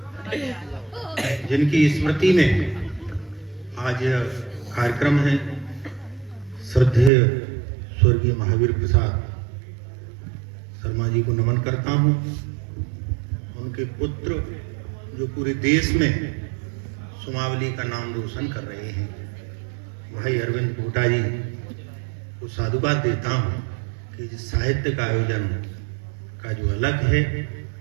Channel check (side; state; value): left; drops out; at 7.1 s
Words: जिनकी स्मृति में आज यह कार्यक्रम है, श्रद्धेय स्वर्गीय महावीर प्रसाद शर्मा जी को नमन करता हूँ। उनके पुत्र जो पूरे देश में सुमावली का नाम रोशन कर रहे हैं, भाई अरविंद पोटा जी को साधुवाद देता हूँ कि जिस साहित्य का आयोजन का जो अलग है